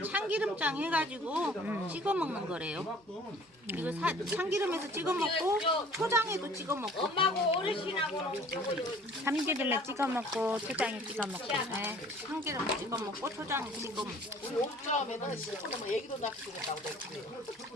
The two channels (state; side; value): normal; both; correlation 0.51